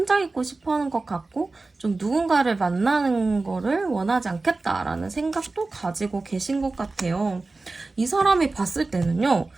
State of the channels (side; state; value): left; quieter; 3.5 dB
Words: 있고 싶어 하는 것 같고 좀 누군가를 만나는 거를 원하지 않겠다라는 생각도 가지고 계신 것 같아요. 이 사람이 봤을 때는요.